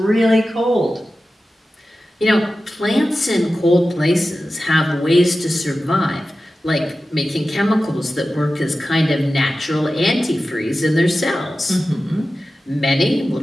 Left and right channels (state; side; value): normal; both; correlation 0.94